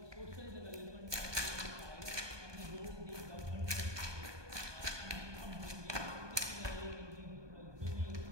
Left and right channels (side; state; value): left; late; 1.2 ms